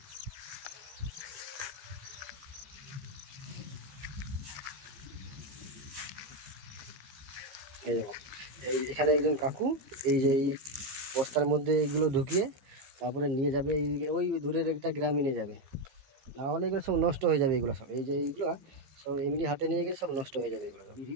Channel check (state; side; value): late; left; 15 ms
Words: এই দেখো, এখানে একজন কাকু এই বস্তার মধ্যে এগুলো ঢুকিয়ে তারপরে নিয়ে যাবে, ওই দূরের একটা গ্রামে নিয়ে যাবে। না হলে এগুলো সব নষ্ট হয়ে যাবে। এগুলো সব এইগুলো সব এমনি হাতে নিয়ে গেলে সব নষ্ট হয়ে যাবে এগুলো সব।